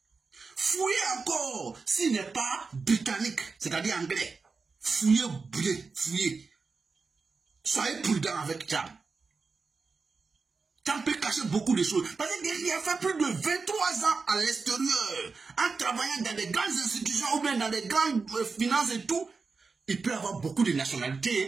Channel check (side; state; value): left; quieter; 4.5 dB